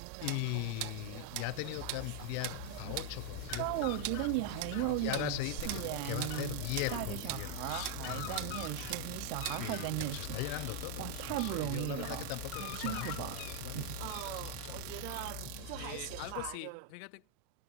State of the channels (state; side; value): different; both; correlation 0.00